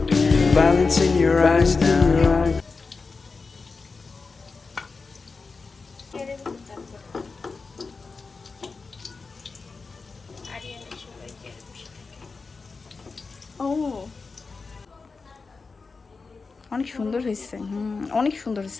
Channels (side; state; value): right; quieter; 4.3 dB